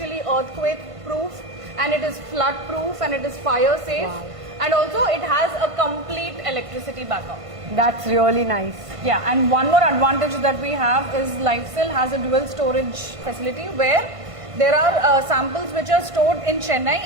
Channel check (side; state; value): left; late; 1.5 ms